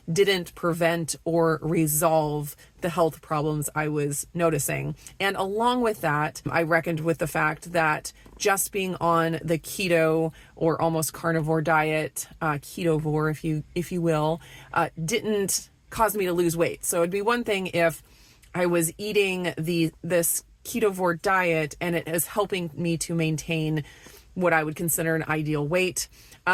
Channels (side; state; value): both; identical; correlation 1.00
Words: didn't prevent or resolve the health problems I was noticing. And along with that, I reckoned with the fact that just being on the keto or almost carnivore diet, ketovore, if you will, didn't cause me to lose weight. So it'd be one thing if I was eating this ketovore diet and it is helping me to maintain what I would consider an ideal weight.